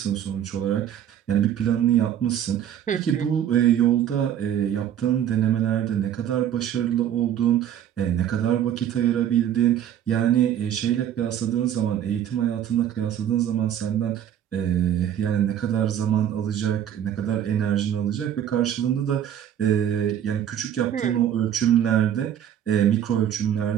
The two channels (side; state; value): left; quieter; 10.1 dB